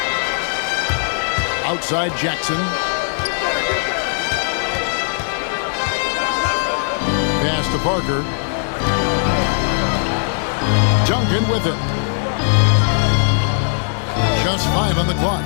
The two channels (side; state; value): right; silent; 64 dB below the other